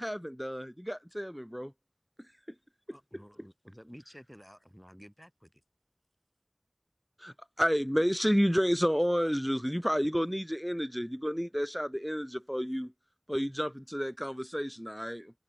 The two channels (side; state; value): both; identical; correlation 1.00